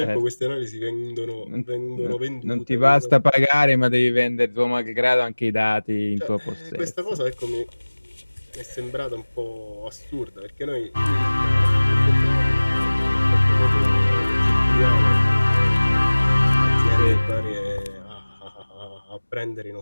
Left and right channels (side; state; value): both; inverted; correlation -1.00